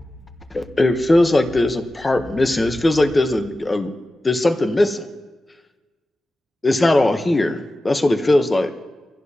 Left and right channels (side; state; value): both; normal; correlation 0.94